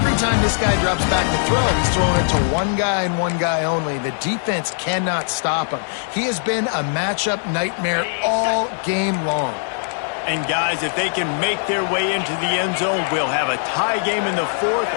time this guy drops back to throw, he's throwing it to one guy and one guy only. The defense cannot stop him. He has been a matchup nightmare all game long. And guys, if they can make their way into the end zone, we'll have a tie game in the 4th,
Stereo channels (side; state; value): right; silent; digital silence